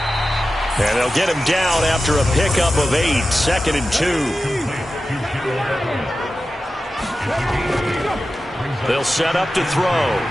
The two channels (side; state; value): both; normal; correlation 0.93